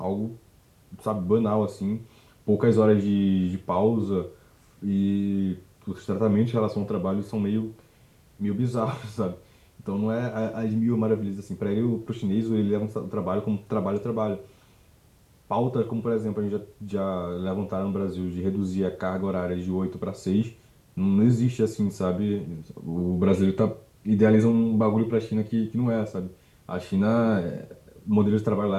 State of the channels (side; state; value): both; identical; correlation 1.00